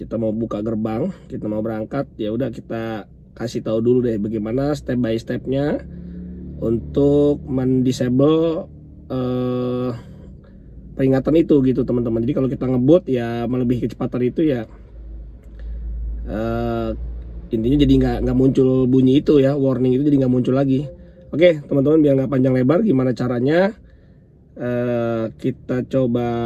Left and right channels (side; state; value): both; identical; correlation 1.00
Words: mau buka gerbang, kita mau berangkat, ya udah kita kasih tahu dulu deh bagaimana step by stepnya untuk mendisable peringatan itu gitu teman-teman. Jadi kalau kita ngebut ya melebihi kecepatan itu ya, eh, intinya jadi nggak muncul bunyi itu ya, warning itu jadi nggak muncul lagi. Oke teman-teman, biar nggak panjang lebar, gimana caranya kita coba